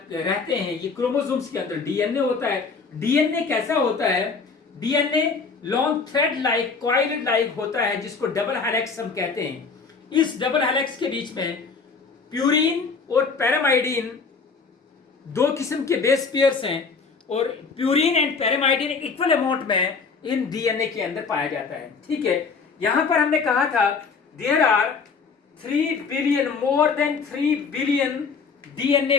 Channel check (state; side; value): quieter; right; 5.0 dB